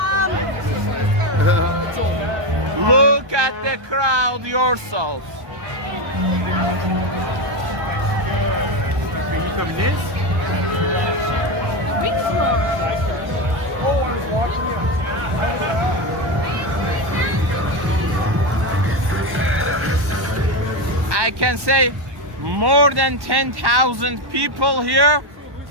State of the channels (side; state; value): left; late; 1.1 ms